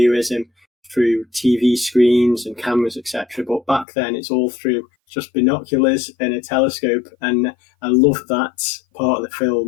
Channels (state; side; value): drops out; right; at 3.9 s